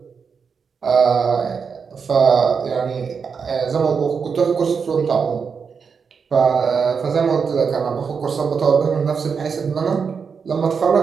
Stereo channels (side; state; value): left; quieter; 5.9 dB